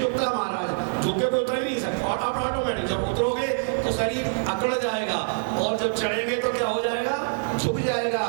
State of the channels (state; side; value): silent; left; digital silence